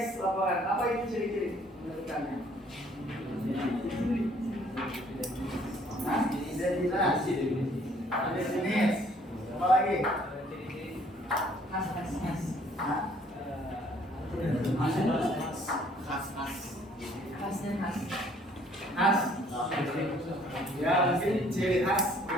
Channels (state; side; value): normal; both; correlation 0.60